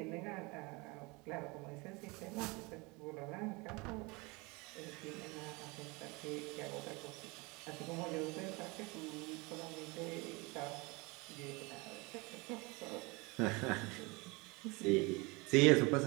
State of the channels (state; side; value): quieter; left; 26.3 dB